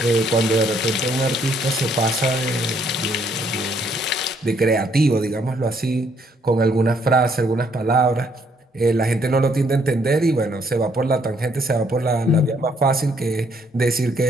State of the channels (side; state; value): both; normal; correlation 0.68